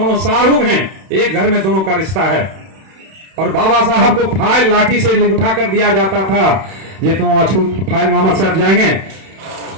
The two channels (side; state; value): left; late; 31 ms